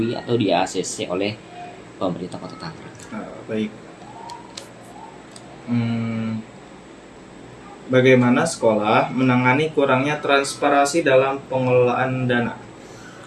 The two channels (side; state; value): both; identical; correlation 1.00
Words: atau di ACC oleh pemerintah Kota Tangerang. Baik. Bagaimana sekolah menangani kurangnya transparansi dalam pengelolaan dana?